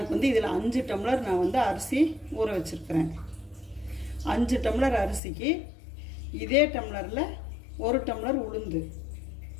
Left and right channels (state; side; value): drops out; right; at 5.2 s